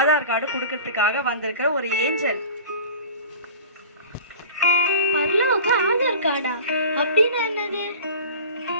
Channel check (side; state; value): both; inverted; correlation -0.39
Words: கார்டு கொடுக்கறதுக்காக வந்திருக்கிற ஒரு ஏஞ்சல். பரலோக ஆதார் கார்டா? அப்படின்னா என்னது?